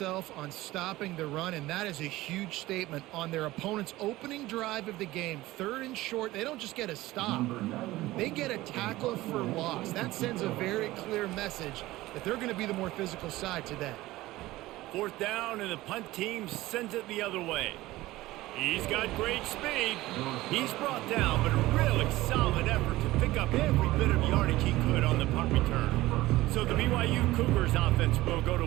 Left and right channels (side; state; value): left; quieter; 17.7 dB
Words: on stopping the run, and that is a huge statement on their opponent's opening drive of the game. 3rd and short, they don't just get a stop. They get a tackle for loss. That sends a very clear message that they're going to be the more physical side today. 4th down, and the punt team sends it the other way. He's got great speed. He's brought down, but a really solid effort to pick up every bit of yardage he could on the punt return. So the BYU Cougars offense will go to